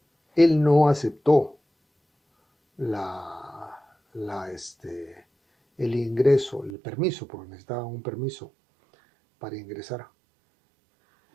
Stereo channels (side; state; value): left; drops out; at 6.7 s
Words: él no aceptó el ingreso, el permiso, porque necesitaba un permiso para ingresar.